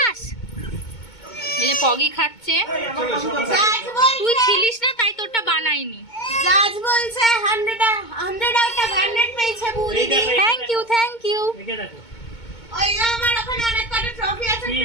এই যে পগি খাচ্ছে, তুই ছিলিস না তাই তোরটা বানাইনি। জাজ বলছে 100 আউট অফ 100 পেয়েছে বুড়ি। এই দেখো, থ্যাংক ইউ। রেখে দেখো। ওই যে আমার ওখানে অনেক কটা ট্রফি আছে, কি,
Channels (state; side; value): late; right; 2.2 ms